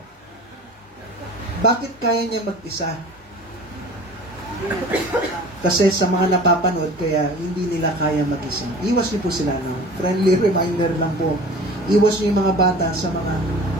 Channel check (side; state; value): both; normal; correlation 0.42